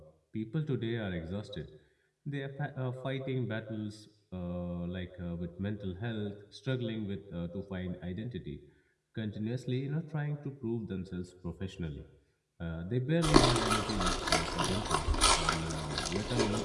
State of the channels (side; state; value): both; identical; correlation 1.00